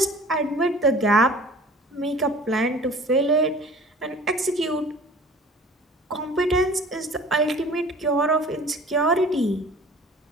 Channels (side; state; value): both; normal; correlation 0.46